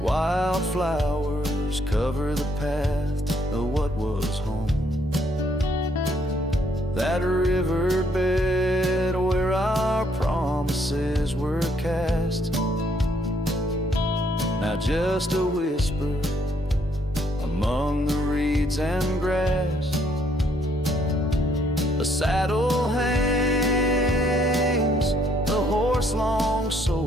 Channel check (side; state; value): both; normal; correlation 0.68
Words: Wildflowers cover the path of what was home. That riverbed where our promises were cast, now just a whisper among the reeds and grass. The saddle hangs, the horse long